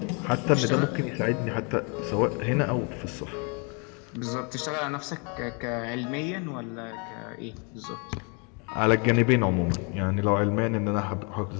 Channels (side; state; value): right; quieter; 34.7 dB